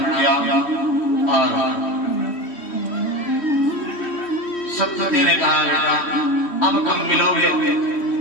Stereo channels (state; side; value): late; right; 3.1 ms